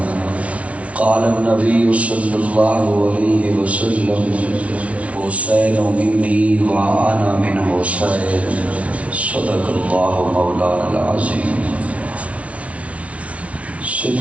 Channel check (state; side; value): late; left; 0.064 ms